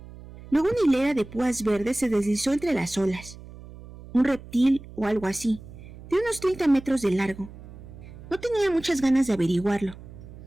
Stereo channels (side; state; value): right; noise; hum, 17 dB below the sound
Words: Luego una hilera de púas verdes se deslizó entre las olas. Un reptil o algo así, de unos 30 metros de largo. No tenía muchas ganas de averiguarlo.